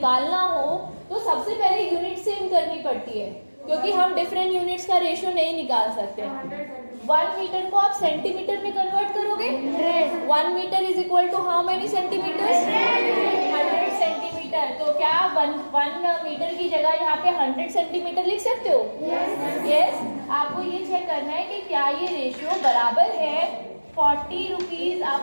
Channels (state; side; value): inverted; both; correlation -1.00